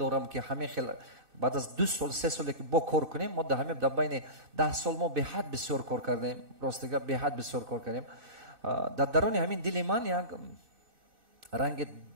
ки ҳамин хел баъд аз 2 сол 3 соле ки бо кор кунем, мо дар ҳамин дар байни 10 сол мо беҳад бисёр кор кардем, ростига беҳад бисёр кор кардем. дар дарони ҳамин дили ман як ранги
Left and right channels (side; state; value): left; late; 2.6 ms